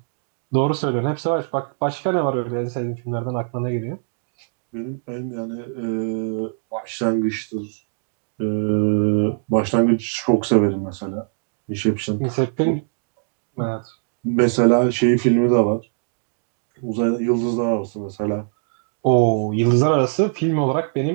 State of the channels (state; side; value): silent; left; digital silence